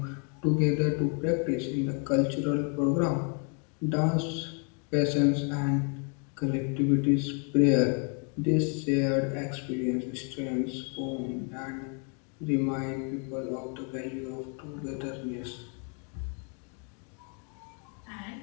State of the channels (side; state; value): right; quieter; 39.8 dB